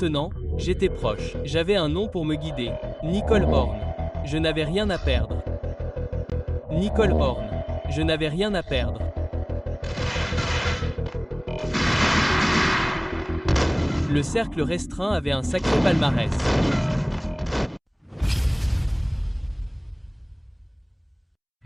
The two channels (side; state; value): both; identical; correlation 1.00